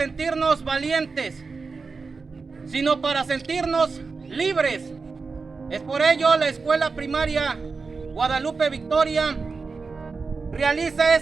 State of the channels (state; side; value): quieter; left; 4.5 dB